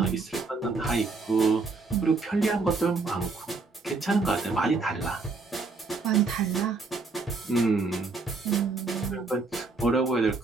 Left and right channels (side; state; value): left; quieter; 3.9 dB